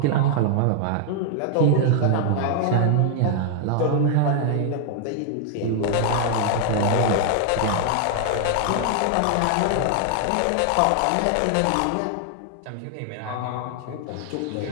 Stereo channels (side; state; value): both; different; correlation 0.00